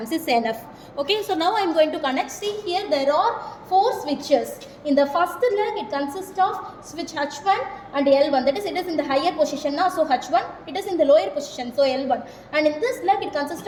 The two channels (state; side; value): identical; both; correlation 1.00